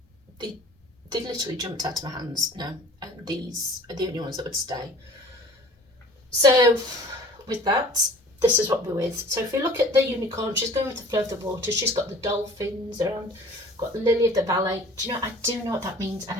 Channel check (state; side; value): normal; both; correlation 0.47